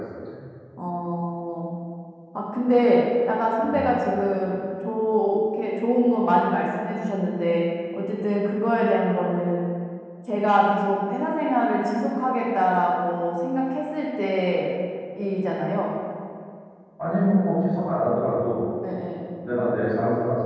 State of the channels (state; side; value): identical; both; correlation 1.00